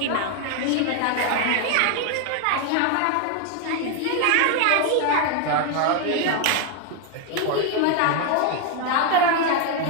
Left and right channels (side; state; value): both; different; correlation 0.01